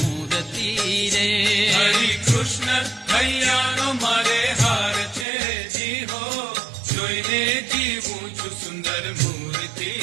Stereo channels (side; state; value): left; drops out; at 5.2 s